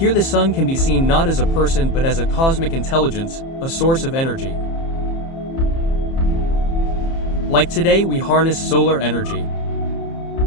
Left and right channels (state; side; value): late; right; 30 ms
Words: the sun can be seen not as a person but as a cosmic intelligence, a source of energy. Like today we harness solar energy.